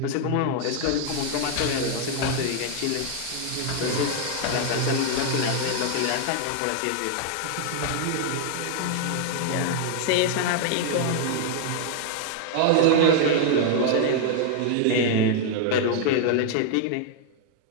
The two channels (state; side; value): different; both; correlation 0.00